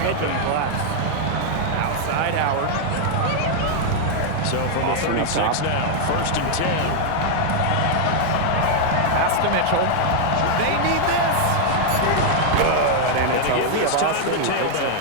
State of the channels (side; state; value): both; different; correlation 0.00